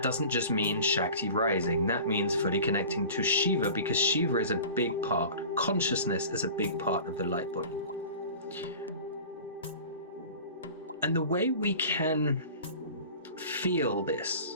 doesn't just mean Shakti rising, that means fully connecting to Shiva, because Shiva is a big part, consciousness is a big part of the light body. And the way we can feel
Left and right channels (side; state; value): both; inverted; correlation -0.40